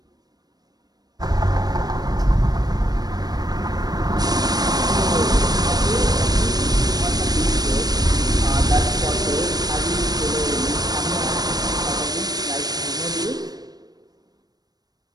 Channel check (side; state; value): left; late; 0.19 ms